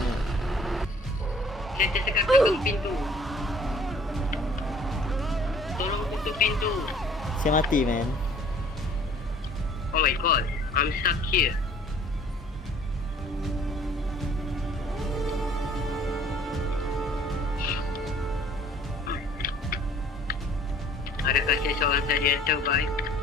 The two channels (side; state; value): both; normal; correlation 0.54